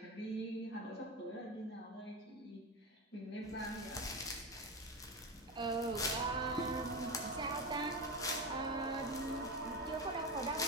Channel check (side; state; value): both; normal; correlation 0.19